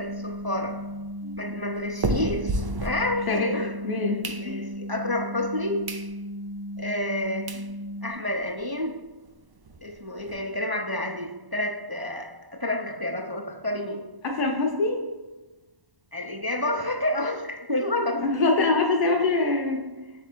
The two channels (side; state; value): left; late; 1.0 ms